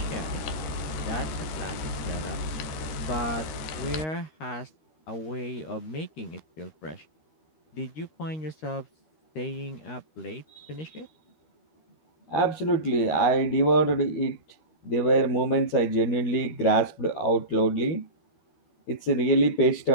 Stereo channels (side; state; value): right; late; 13 ms